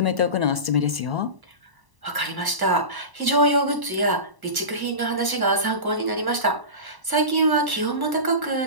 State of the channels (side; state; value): left; late; 1.0 ms